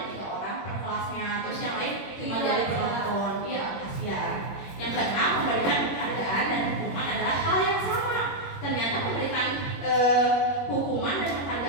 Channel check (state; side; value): late; right; 21 ms